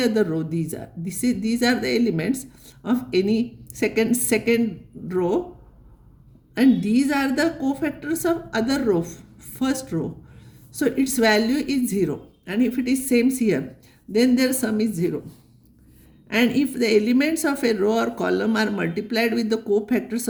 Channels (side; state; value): both; identical; correlation 1.00